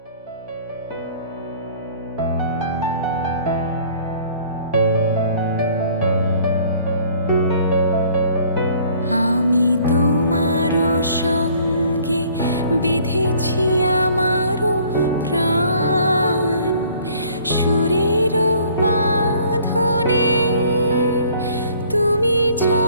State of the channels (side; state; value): both; inverted; correlation -0.56